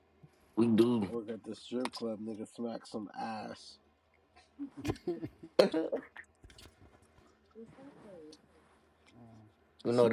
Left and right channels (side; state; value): both; identical; correlation 1.00